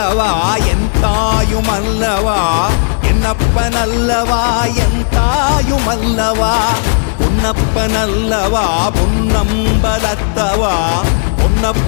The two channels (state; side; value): silent; right; digital silence